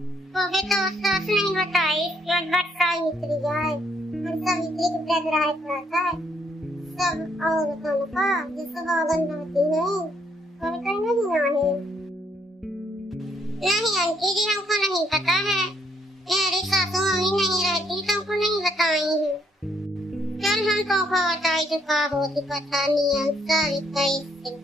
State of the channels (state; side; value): normal; both; correlation 0.70